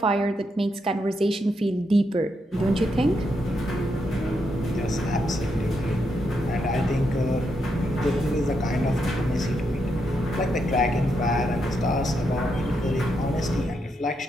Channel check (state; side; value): normal; both; correlation 0.81